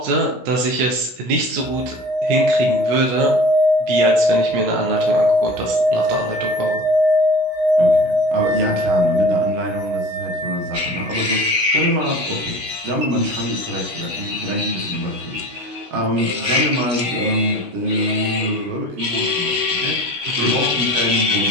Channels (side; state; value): left; late; 16 ms